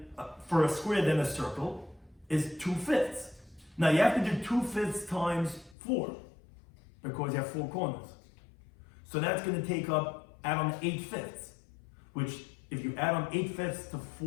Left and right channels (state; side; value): drops out; right; at 5.8 s